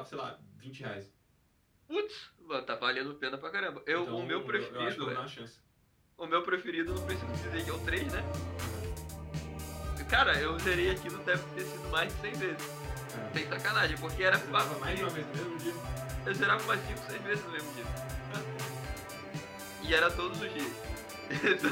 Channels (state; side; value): identical; both; correlation 1.00